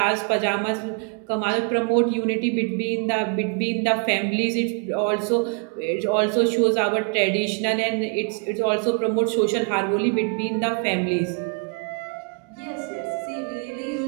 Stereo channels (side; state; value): left; quieter; 39.4 dB